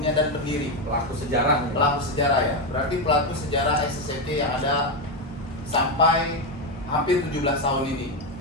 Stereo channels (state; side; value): normal; both; correlation 0.09